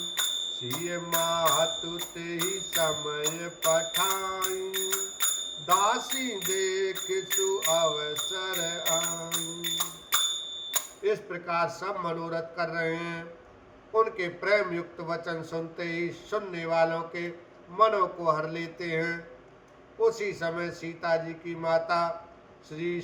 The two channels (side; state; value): both; identical; correlation 1.00